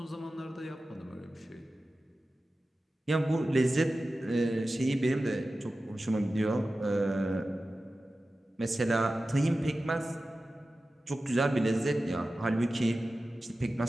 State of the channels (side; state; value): both; normal; correlation 0.94